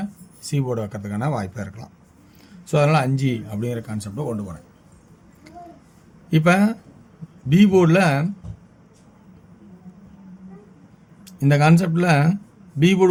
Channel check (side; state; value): both; identical; correlation 1.00